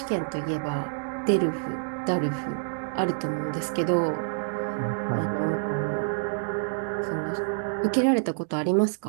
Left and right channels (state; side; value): silent; left; digital silence